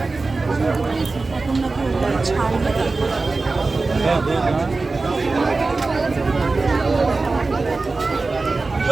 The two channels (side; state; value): left; quieter; 3.7 dB